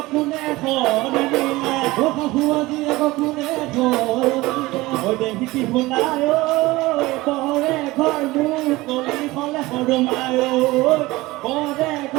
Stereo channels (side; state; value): left; quieter; 20.0 dB